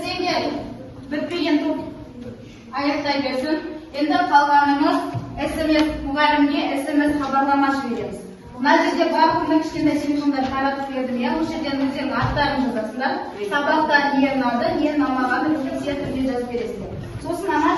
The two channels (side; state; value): both; identical; correlation 1.00